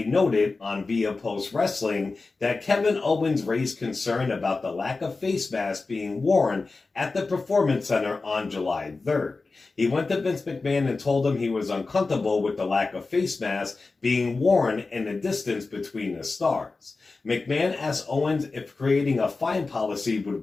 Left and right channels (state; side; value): quieter; right; 3.8 dB